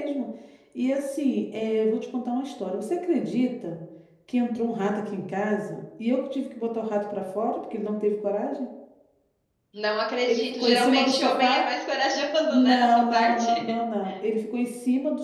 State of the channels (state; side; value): identical; both; correlation 1.00